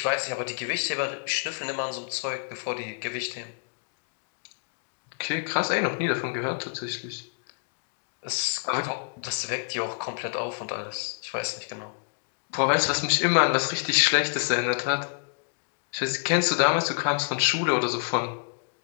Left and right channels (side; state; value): right; silent; digital silence